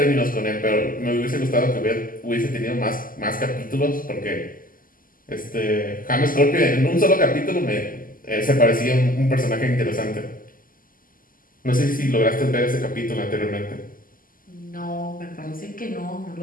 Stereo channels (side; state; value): right; late; 0.41 ms